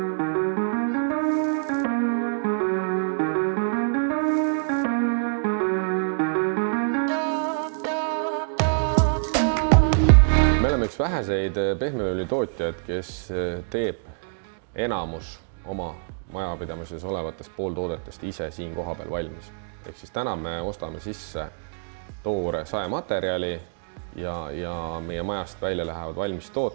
oleme üks väheseid pehmeõli tootjaid, kes teeb enamus oma majapidamises olevatest pooltoodetest ise siin kohapeal valmis. Ehk siis täna me ostame sisse toore saematerjali ja meie majast välja lähevad valmis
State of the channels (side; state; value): left; silent; digital silence